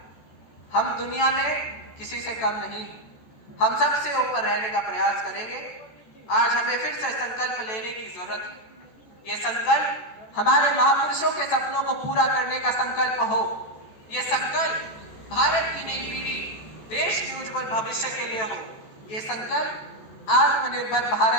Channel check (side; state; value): right; late; 14 ms